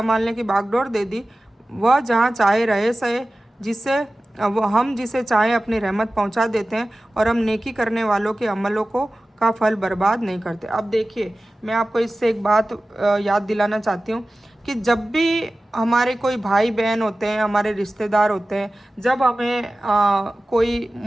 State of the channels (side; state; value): both; normal; correlation 0.96